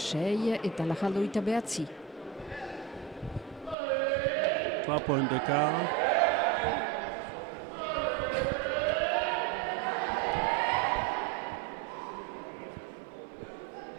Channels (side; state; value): left; drops out; at 3.8 s